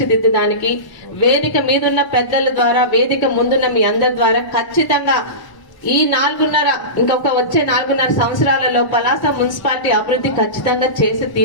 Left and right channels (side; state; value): right; late; 1.0 ms